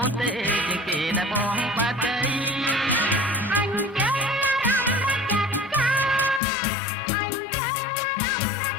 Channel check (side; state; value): right; drops out; at 6.4 s